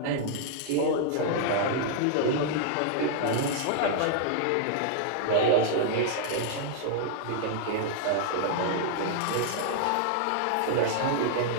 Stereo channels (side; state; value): both; different; correlation -0.01